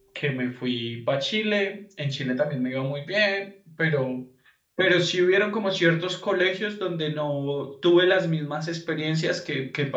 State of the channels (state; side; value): identical; both; correlation 1.00